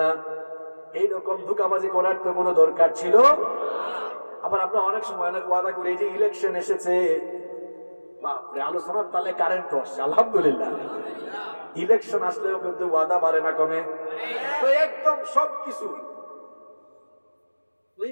এইরকম ধোঁকাবাজি করার তো কোনো দরকার ছিল? আবার আমরা অনেক সময় অনেক ওয়াদা করি, এই যে ইলেকশন এসেছে, বাপরে আলোচনার তালে কারেন্ট আসছে, আলহামদুলিল্লাহ। ইলেকশন আসলেও কিন্তু ওয়াদা বাড়ে না কমে। তো একদম সবকিছু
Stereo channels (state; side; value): inverted; both; correlation -1.00